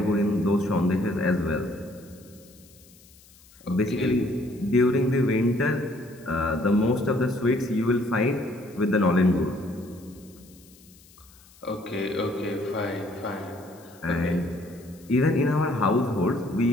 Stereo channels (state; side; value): noise; left; hiss, 26 dB below the sound